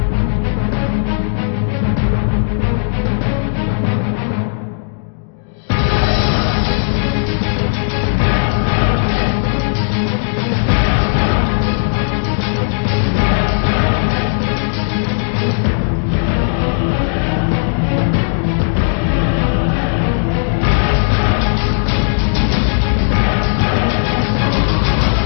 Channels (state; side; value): silent; right; digital silence